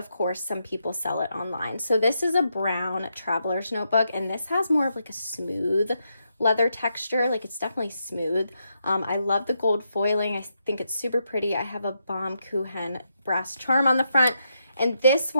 course some people sell it online. So this is a brown traveler's notebook, and this has more of like a smooth leather texture. Like, it's definitely smooth. I love the gold foiling. I think it's super pretty. I have a Baumkuchen brass charm on the front, and this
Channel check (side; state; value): both; inverted; correlation -0.81